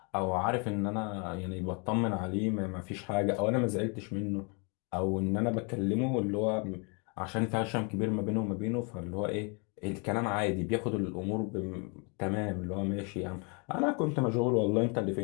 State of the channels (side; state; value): right; quieter; 34.5 dB